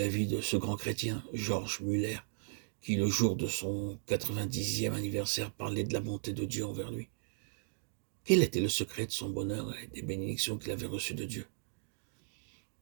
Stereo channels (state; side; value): silent; left; digital silence